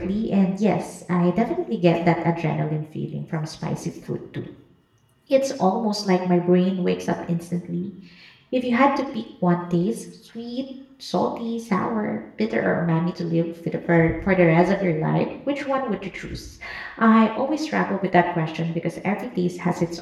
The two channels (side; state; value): both; identical; correlation 1.00